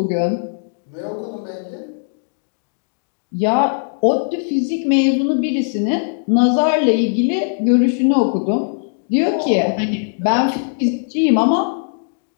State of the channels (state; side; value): silent; right; digital silence